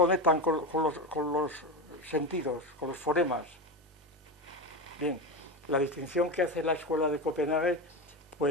los sentidos, con los fonemas? Bien, la distinción que hace la escuela de Copenhague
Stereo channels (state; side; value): normal; both; correlation 0.19